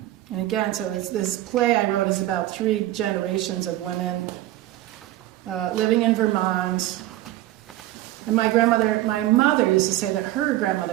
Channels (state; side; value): quieter; left; 15.5 dB